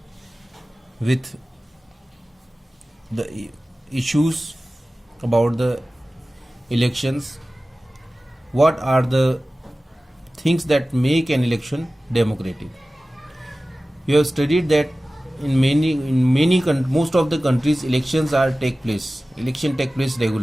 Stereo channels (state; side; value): normal; both; correlation 0.96